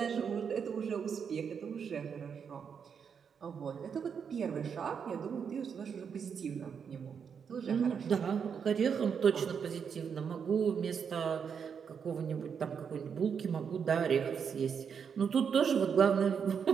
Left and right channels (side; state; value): left; quieter; 6.8 dB